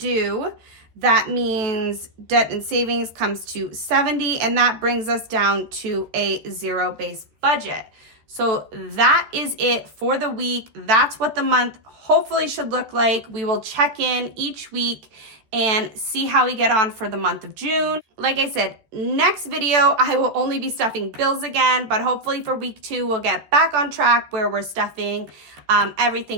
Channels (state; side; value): late; left; 13 ms